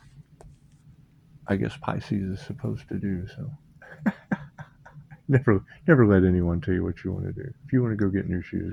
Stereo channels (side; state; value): both; identical; correlation 1.00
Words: I guess Pisces is supposed to do. So never let anyone tell you what you want to do. If you want to go get new